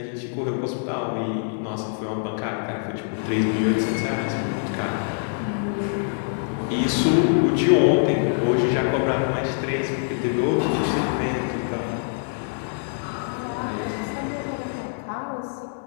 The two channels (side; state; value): right; silent; digital silence